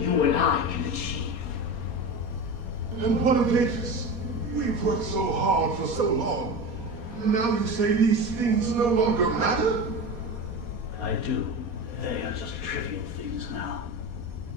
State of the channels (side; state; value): left; late; 4.2 ms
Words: and I can achieve. And what of Avis? We've worked so hard for so long. Now you say these things no longer matter? I do. They are just trivial things now.